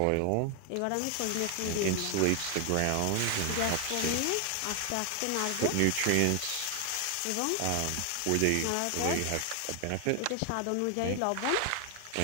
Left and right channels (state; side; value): different; both; correlation 0.00